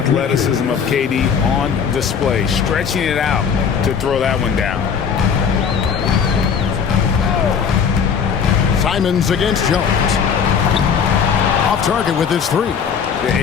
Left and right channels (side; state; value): right; quieter; 6.9 dB